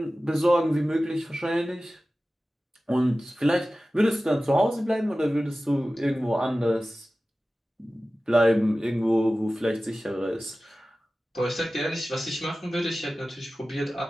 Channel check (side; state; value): both; normal; correlation 0.96